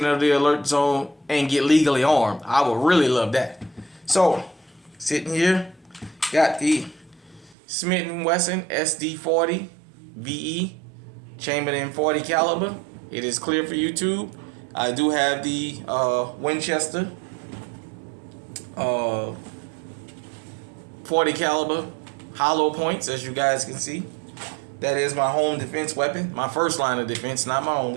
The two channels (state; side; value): drops out; left; at 7.6 s